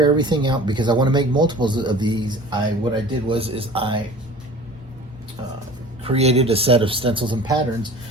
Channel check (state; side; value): normal; both; correlation 0.42